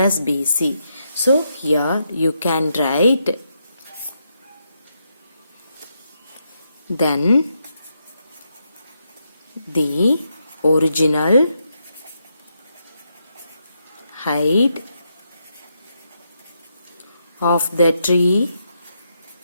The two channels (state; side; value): inverted; both; correlation -0.81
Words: BC. So, here you can write, then the original height of the tree